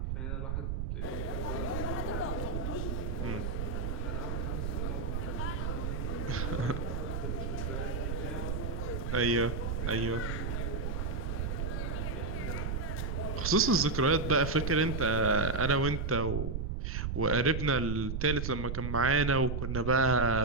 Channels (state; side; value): noise; right; rumble, 2 dB below the sound